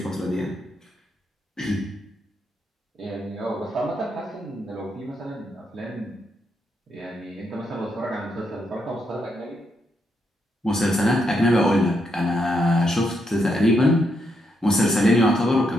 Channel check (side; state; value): both; normal; correlation 0.79